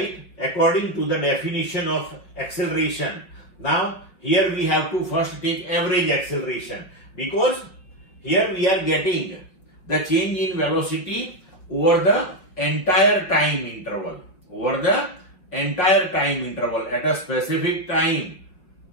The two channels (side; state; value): right; late; 5.2 ms